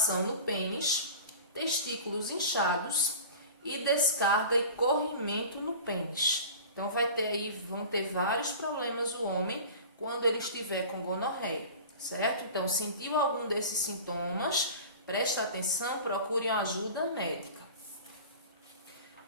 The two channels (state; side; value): inverted; both; correlation -0.38